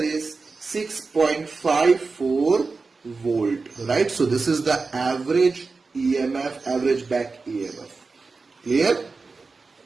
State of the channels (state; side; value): quieter; left; 4.2 dB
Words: 6.54 volt, right? So this is the average EMF, average back EMF. Clear?